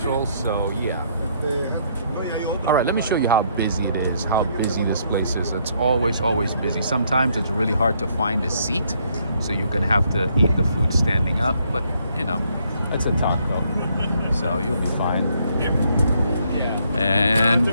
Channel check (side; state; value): both; inverted; correlation -0.71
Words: So yeah. All right, let me show you how busy it is, how busy this place is. It's always busy. Sometimes it's really hard to find a seat, so you're gonna have to eat the food standing up, but you know, it's a taco, so you'll be fine. And